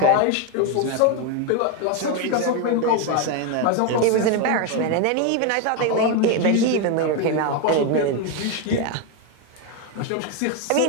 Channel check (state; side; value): different; both; correlation 0.02